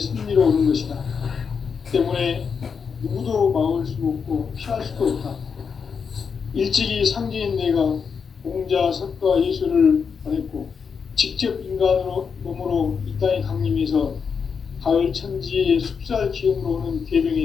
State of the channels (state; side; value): quieter; right; 6.1 dB